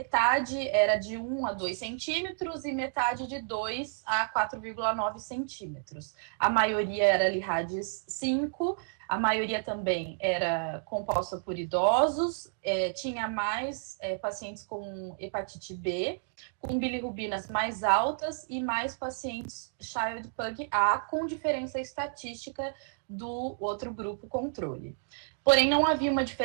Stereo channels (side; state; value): left; silent; digital silence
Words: era de 1 a 2 centímetros e metade de 2 a 4,9 centímetros. A maioria era Lee-Hadges 5, a maioria também era composta por idosos, tinha mais pacientes com hepatite B, com bilirrubinas mais altas e mais pacientes Child-Pugh A, com diferença estatística do outro grupo controle. Porém, não havia uma